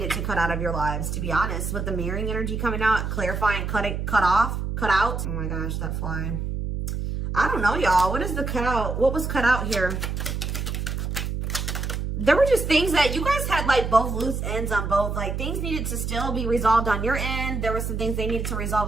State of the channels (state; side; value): noise; right; hum, 3 dB below the sound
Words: to cut out of your lives, to be honest, with the mirroring energy coming out, clarifying, cut out. Oh my gosh, that fly. I don't know, y'all. What is the cut out? What was cut out here? There were just things that you guys had like both loose ends on both. Like things needed to still be resolved on your end. There were some things they needed to resolve